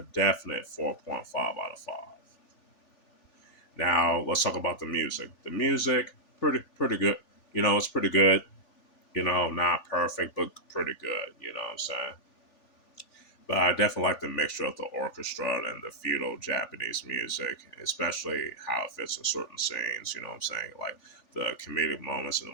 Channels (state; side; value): late; right; 3.4 ms